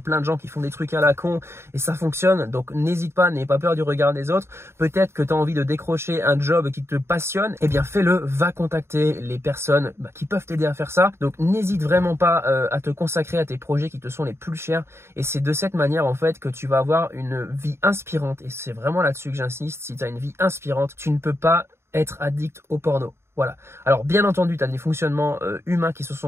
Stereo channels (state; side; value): late; left; 0.12 ms